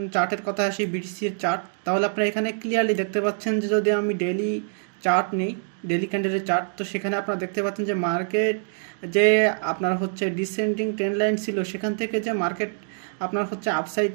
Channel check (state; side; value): silent; left; 62 dB below the other